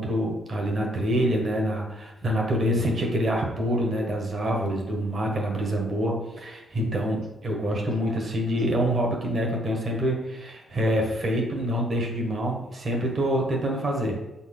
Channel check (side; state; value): both; normal; correlation 0.65